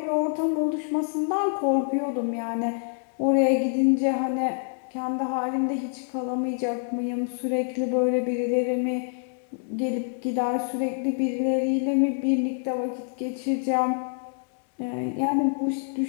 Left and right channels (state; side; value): silent; right; 61 dB below the other